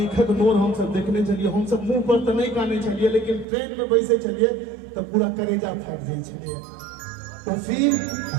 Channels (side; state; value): left; drops out; at 3.5 s